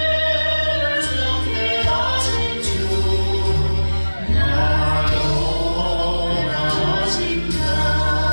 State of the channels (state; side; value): inverted; both; correlation -1.00